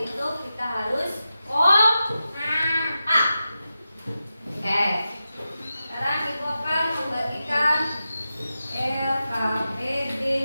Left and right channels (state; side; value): inverted; both; correlation -0.91